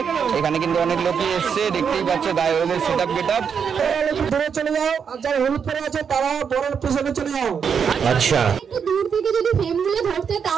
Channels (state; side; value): quieter; left; 6.8 dB